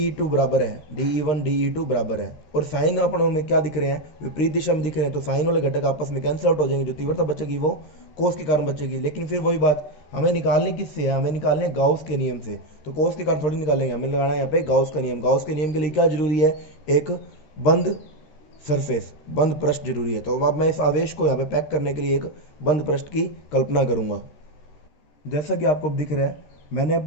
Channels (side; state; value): right; late; 13 ms